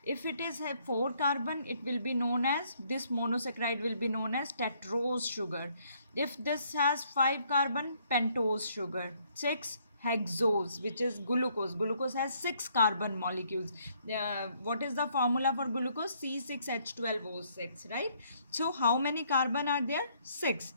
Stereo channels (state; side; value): inverted; both; correlation -0.67